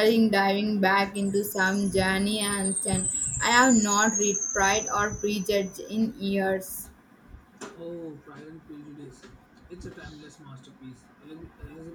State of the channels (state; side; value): identical; both; correlation 1.00